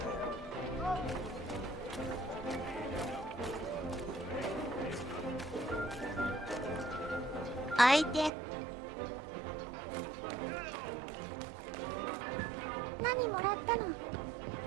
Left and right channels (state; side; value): drops out; left; at 8.3 s